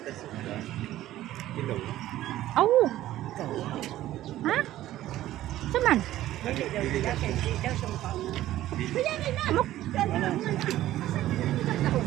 Kilo. Aw. Ha? Saman?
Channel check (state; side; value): quieter; left; 14.2 dB